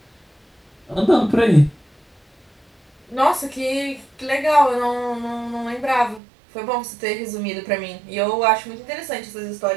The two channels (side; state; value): left; drops out; at 6.2 s